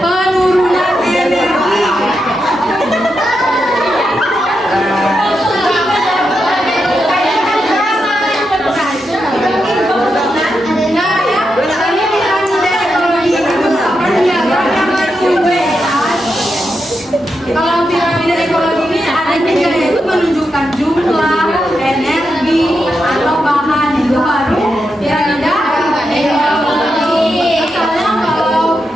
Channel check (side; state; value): both; normal; correlation 0.85